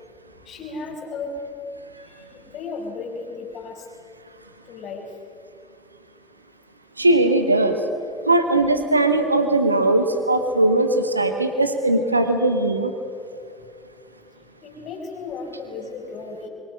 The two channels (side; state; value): both; inverted; correlation -0.47